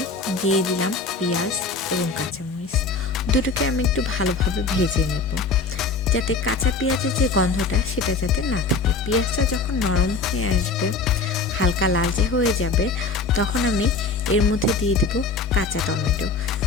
দিয়ে দিলাম পেঁয়াজ এবং কাঁচামরিচ। দুটোকে আমি একটু ভালোভাবে ভেজে নেব, যাতে কাঁচা পেঁয়াজের যে গন্ধটা সেটা যাতে না থাকে। পেঁয়াজটা যখন নরম হয়ে আসবে, হালকা লালচে হয়ে যাবে, তখন আমি এর মধ্যে দিয়ে দেব কাঁচা টমেটো।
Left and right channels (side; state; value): right; quieter; 4.0 dB